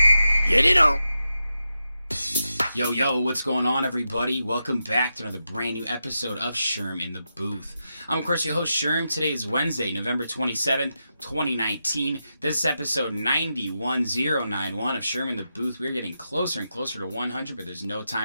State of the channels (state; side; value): inverted; both; correlation -0.88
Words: Get it on. Yo, what's going on, everybody? Welcome back to another brand new episode of Sherm In The Booth. I'm, of course, your host, Sherm. Today is Wednesday, November 27th, 2019. This is episode 91091 of Sherm In The Booth. We're getting closer and closer to 100, but there's no